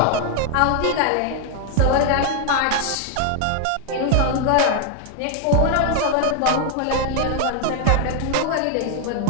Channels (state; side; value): different; both; correlation 0.00